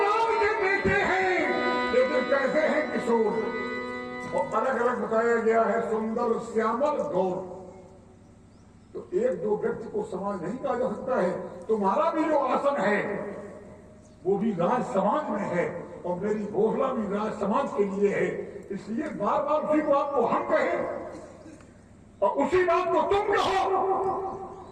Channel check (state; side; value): identical; both; correlation 1.00